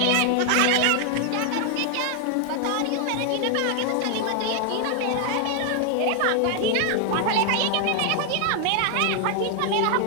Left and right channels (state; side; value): different; both; correlation 0.00